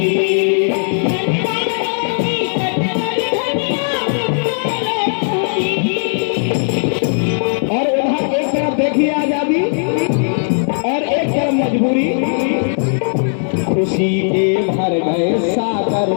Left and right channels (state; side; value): silent; right; digital silence